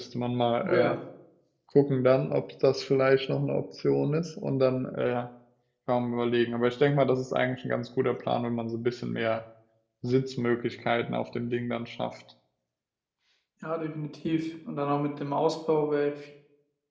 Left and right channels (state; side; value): identical; both; correlation 1.00